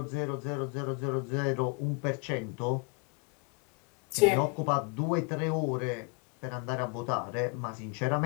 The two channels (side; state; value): right; quieter; 32.8 dB